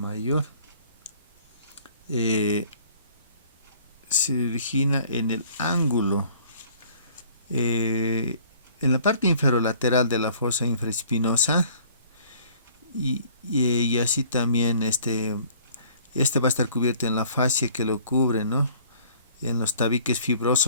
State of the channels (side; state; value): both; inverted; correlation -0.54